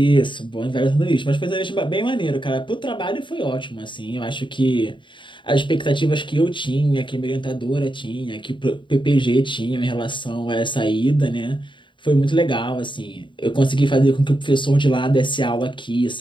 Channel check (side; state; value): right; late; 0.23 ms